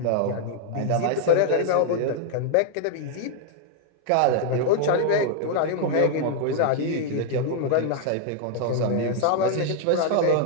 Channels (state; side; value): different; both; correlation 0.00